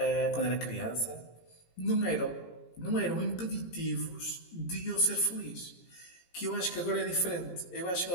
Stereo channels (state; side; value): late; right; 17 ms